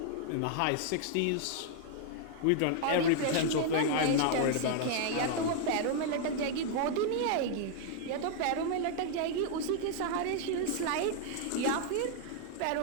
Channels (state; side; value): different; both; correlation 0.00